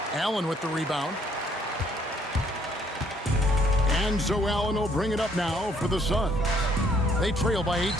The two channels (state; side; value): normal; both; correlation 0.65